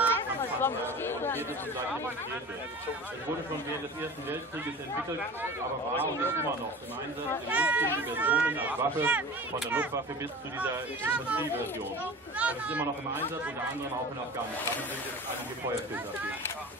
Kampfpanzer montiert ist und gleich demonstriert wird. Es wurde schon während des Ersten Weltkrieges entwickelt, aber war und ist immer noch im Einsatz in unzähligen Versionen als Waffe, von der Luftwaffe bis zu dieser Infanterieversion. Es ist immer noch im Einsatz, unter anderem auch in Afghanistan. Sind jetzt einige Feuerfilter dafür.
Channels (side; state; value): both; normal; correlation 0.37